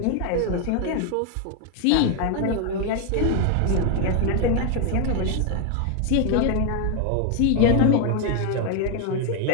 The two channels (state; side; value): different; both; correlation 0.01